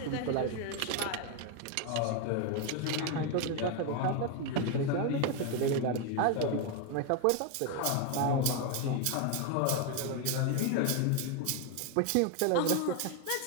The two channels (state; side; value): different; both; correlation 0.01